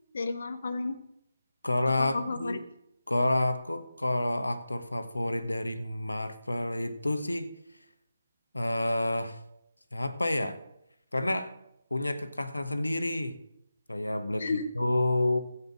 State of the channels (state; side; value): inverted; both; correlation -0.93